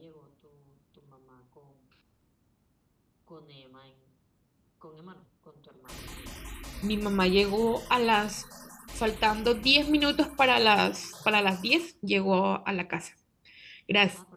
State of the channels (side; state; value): both; identical; correlation 1.00